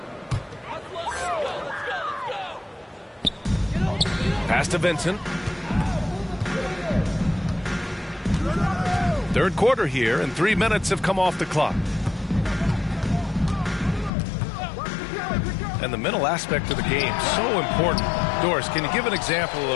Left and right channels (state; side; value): drops out; right; at 14.1 s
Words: Pass to Vincent. Third quarter here, and 3 minutes have come off the clock. And the mental aspect of the game, so important. Doris, can you give an example